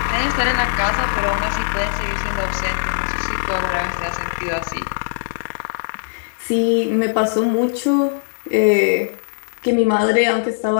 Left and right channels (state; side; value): silent; right; digital silence